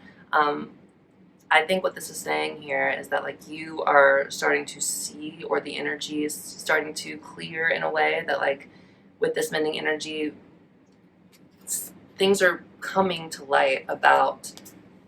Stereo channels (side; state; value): both; identical; correlation 1.00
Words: I think what this is saying here is that like you are starting to see, or the energy is starting to clear in a way that like with this mending energy, things are coming to light about